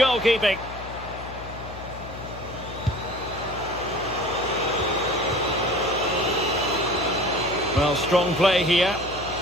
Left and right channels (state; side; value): noise; left; hum, 13 dB below the sound